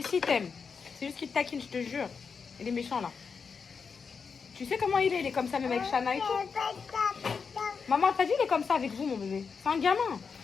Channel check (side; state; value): right; quieter; 5.6 dB